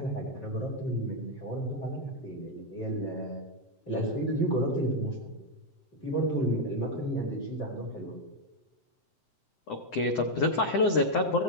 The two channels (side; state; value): right; late; 7.8 ms